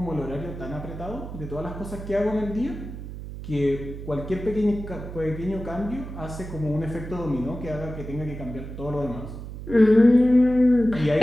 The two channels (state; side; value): noise; right; hum, 10 dB below the sound